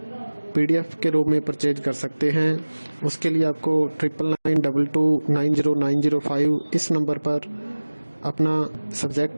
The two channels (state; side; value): inverted; both; correlation -1.00